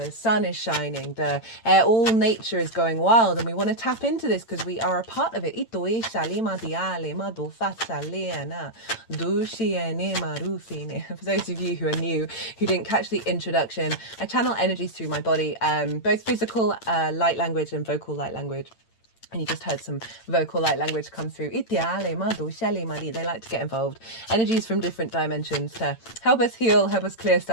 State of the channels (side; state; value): right; late; 8.9 ms